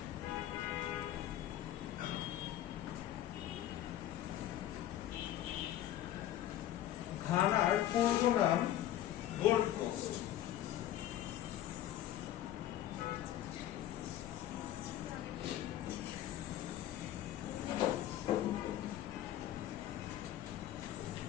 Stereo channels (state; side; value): quieter; right; 12.7 dB